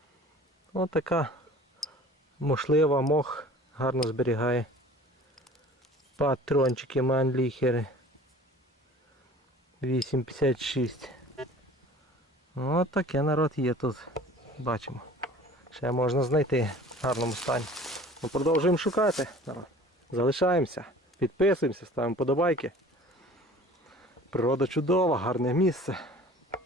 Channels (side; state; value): both; normal; correlation 0.46